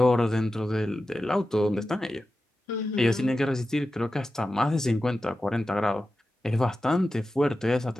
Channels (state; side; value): normal; both; correlation 0.93